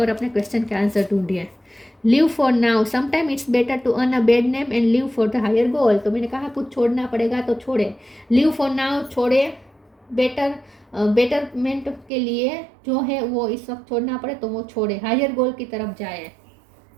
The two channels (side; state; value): left; drops out; at 12.1 s